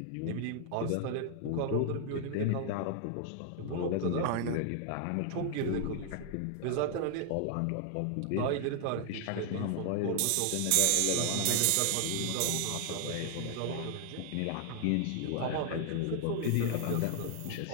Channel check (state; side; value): different; both; correlation 0.00